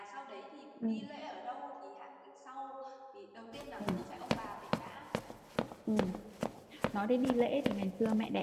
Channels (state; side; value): identical; both; correlation 1.00